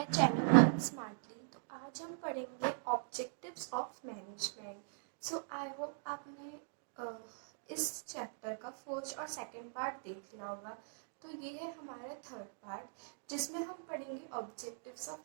channel learn smartly. तो आज हम पढ़ेंगे objectives of management. So I hope आपने इस चैप्टर का फर्स्ट और सेकंड पार्ट देख लिया होगा। तो ये है हमारा थर्ड पार्ट, जिसमें हम पढ़ेंगे ऑब्जेक्टिव्स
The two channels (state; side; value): silent; left; digital silence